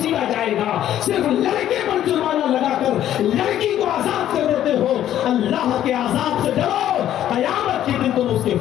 جائے گا۔ صرف لڑکے پر جرمانہ لگا کر لڑکی کو آزاد کر دیتے ہو، اللہ کے عذاب سے ڈرو، قیامت کے دن تم اس کے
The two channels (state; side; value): quieter; right; 11.6 dB